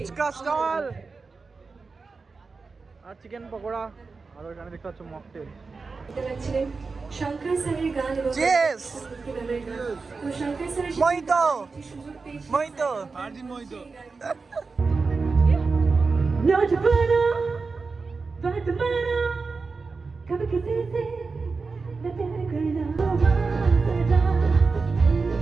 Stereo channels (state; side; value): quieter; left; 4.4 dB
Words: স্টল আর চিকেন পকোড়া আর ওইখানে দেখতে পাচ্ছ মকটেল। ছিলেন শঙ্কর স্যারের গান এবং Cheers! ভক্তিগানের গান। তো শঙ্কর স্যারের সাথে মহিতো! একটি সুযোগ পেয়েছি। মহিতো! আর দিন মই তো नौजवाना बात माना कभी किसी से न प्यार करना सदा